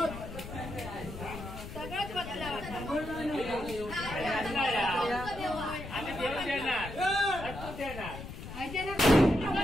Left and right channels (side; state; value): left; noise; rumble, 11 dB below the sound